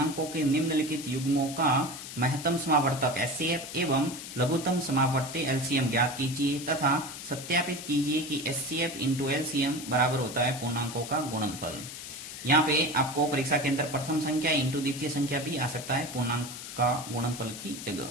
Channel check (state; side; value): noise; left; hiss, 10 dB below the sound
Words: के निम्नलिखित युग्मों का महत्तम समावर्तक एचसीएफ एवं लघुत्तम समावर्ती एलसीएम ज्ञात कीजिए तथा सत्यापित कीजिए कि एचसीएफ इंटू एलसीएम बराबर होता है पूर्णांकों का गुणनफल। यहाँ पे आपको परीक्षा के अंदर प्रथम संख्या इंटू द्वितीय संख्या भी आ सकता है पूर्णांक का गुणनफल की